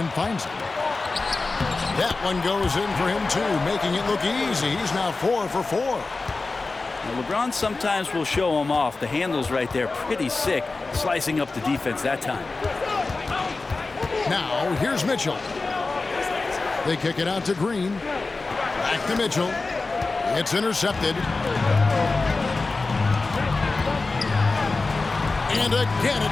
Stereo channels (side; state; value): right; quieter; 3.7 dB